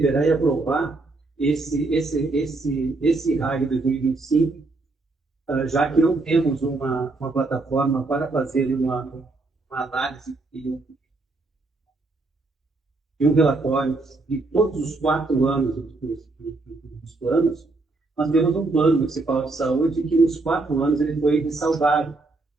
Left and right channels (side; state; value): left; quieter; 3.4 dB